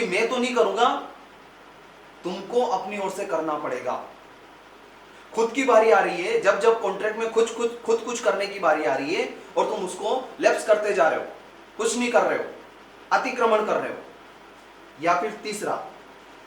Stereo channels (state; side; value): identical; both; correlation 1.00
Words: मैं तो नहीं करूंगा, तुमको अपनी ओर से करना पड़ेगा। खुद की बारी आ रही है, जब जब कॉन्ट्रैक्ट में खुद कुछ करने की बारी आ रही है और तुम उसको लैप्स करते जा रहे हो, कुछ नहीं कर रहे हो, अतिक्रमण कर रहे हो। या फिर तीसरा,